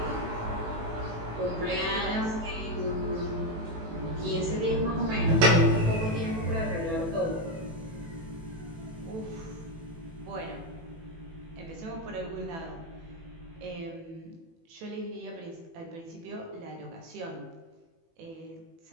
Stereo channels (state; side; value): late; left; 18 ms